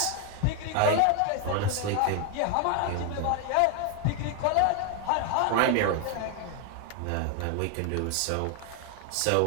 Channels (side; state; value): both; different; correlation 0.01